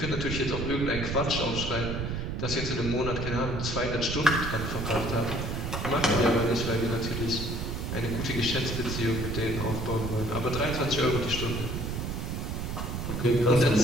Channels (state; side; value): noise; right; rumble, 3 dB below the sound